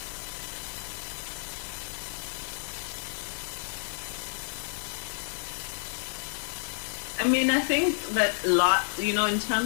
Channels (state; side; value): silent; right; digital silence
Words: I mean, I think that in